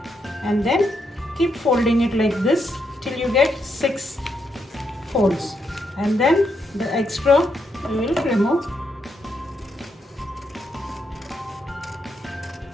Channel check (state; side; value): normal; both; correlation 0.80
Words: and then keep folding it like this till you get 6 folds, and then the extra you will remove.